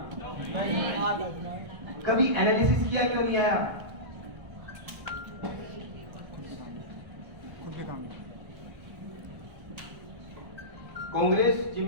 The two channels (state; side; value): late; left; 1.4 ms